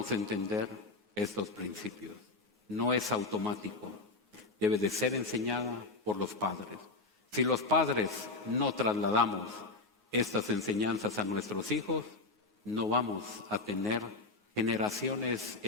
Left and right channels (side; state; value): right; quieter; 3.3 dB